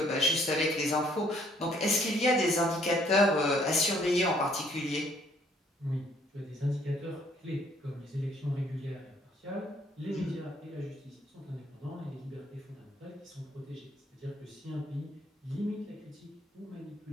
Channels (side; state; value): both; normal; correlation 0.64